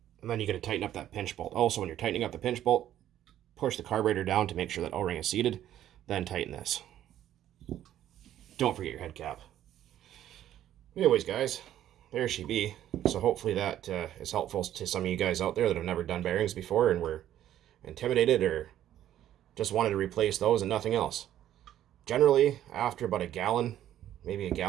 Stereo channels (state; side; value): quieter; left; 11.8 dB